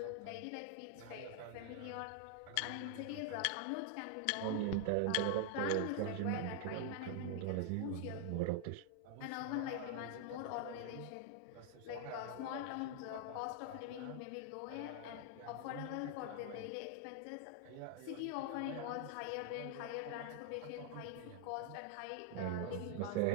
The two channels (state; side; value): different; both; correlation 0.00